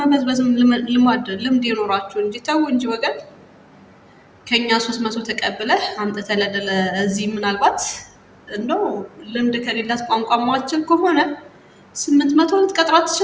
መበዝበዝም ልምድ ይኖራችሁ እንጂ ተው እንጂ ወገን። ከኛ 300 ተቀብለህ አምጥተህ እዚህ ምናልባት እንደው ልምድ ከሌላት ቋንቋ ማችል ከሆነ 800 ልትቀጥራት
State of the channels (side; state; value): both; identical; correlation 1.00